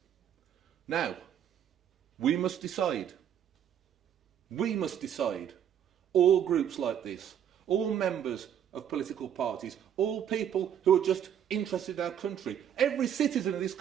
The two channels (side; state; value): left; quieter; 9.3 dB